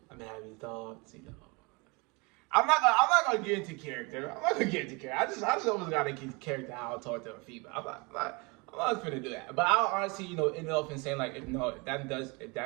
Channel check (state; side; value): quieter; left; 28.4 dB